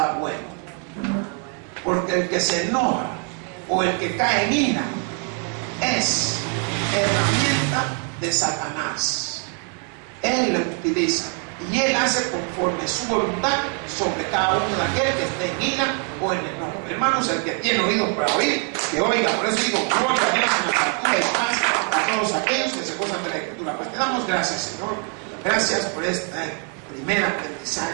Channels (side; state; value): left; quieter; 36.2 dB